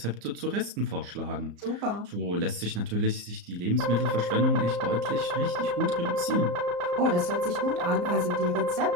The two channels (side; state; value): left; late; 34 ms